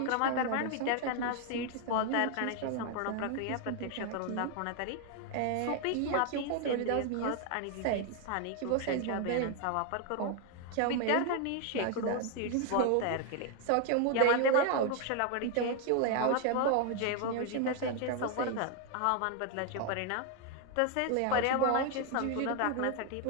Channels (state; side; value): different; both; correlation 0.01